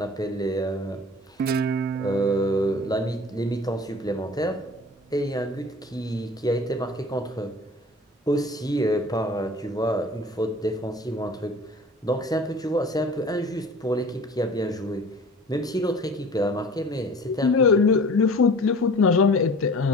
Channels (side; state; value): both; normal; correlation 0.43